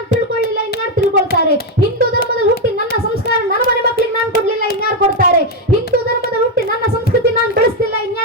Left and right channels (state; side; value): normal; both; correlation 0.06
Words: ತಿಳ್ಕೊಳ್ಳಿಲ್ಲ, ಇನ್ಯಾರು ತಿಳ್ಕೊಳ್ತಾರೆ? ಹಿಂದೂ ಧರ್ಮದಲ್ಲಿ ಹುಟ್ಟಿ ನನ್ನ ಸಂಸ್ಕಾರ ನನ್ನ ಮನೆ ಮಕ್ಕಳಿಗೆ ನಾನು ಕೊಡ್ಲಿಲ್ಲ, ಇನ್ಯಾರು ಕೊಡ್ತಾರೆ? ಹಿಂದೂ ಧರ್ಮದಲ್ಲಿ ಹುಟ್ಟಿ ನನ್ನ ಸಂಸ್ಕೃತಿ ನಾನು ಬೆಳೆಸ್ತಿಲ್ಲ,